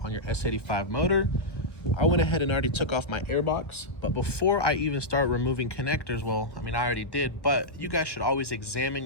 on your S85 motor. I went ahead and already took off my airbox, but before I even start removing connectors, well, I mean, I already did, but you guys should always examine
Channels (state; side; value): late; right; 1.6 ms